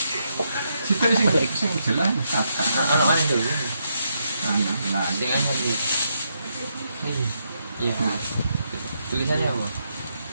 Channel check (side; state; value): both; inverted; correlation -0.79